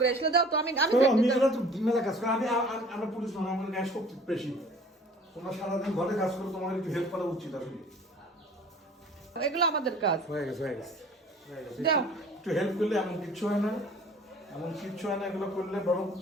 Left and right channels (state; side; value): normal; both; correlation 0.49